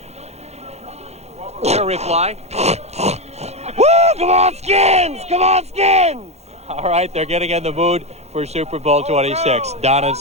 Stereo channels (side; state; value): left; late; 0.31 ms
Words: Your reply? Woo! Come on, Skins! Come on, Skins! All right, they're getting in the mood for Super Bowl 26. Don and